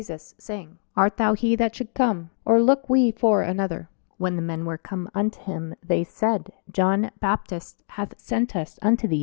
saying, Art thou he that should come, or look we for another? When the men were come unto him, they said, John Baptist hath sent us unto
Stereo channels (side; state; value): right; silent; digital silence